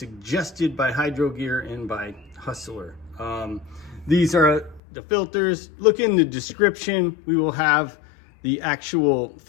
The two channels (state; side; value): drops out; right; at 4.8 s